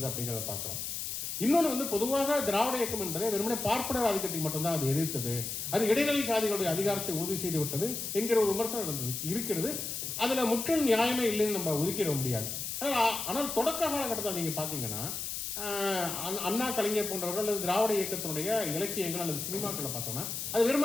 அப்படிங்கிறத பார்க்கிறோம். இன்னொன்று வந்து பொதுவாக திராவிட இயக்கம் என்பதை வெறுமனே பார்ப்பனர் ஆதிக்கத்தை மட்டும்தான் அது எதிர்த்தது, அது இடைநிலை சாதிகளுடைய அதிகாரத்தை உறுதி செய்து விட்டது என்கிற ஒரு விமர்சனம் இருக்கிறது. அதுல முற்றிலும் நியாயமே இல்லைன்னு நம்ம ஒதுக்கிட முடியாது. ஆனால் தொடக்க காலகட்டத்தில் நீங்க பாத்தீங்கன்னா அண்ணா, கலைஞர் போன்றவர்கள் அல்லது திராவிட இயக்கத்தினுடைய இலக்கியங்கள் அல்லது சினிமாக்களை பார்த்தோம்னா அது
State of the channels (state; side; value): noise; left; hiss, 4 dB below the sound